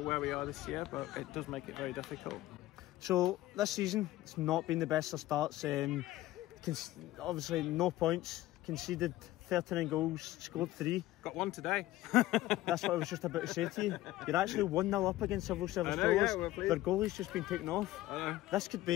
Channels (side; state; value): right; quieter; 16.2 dB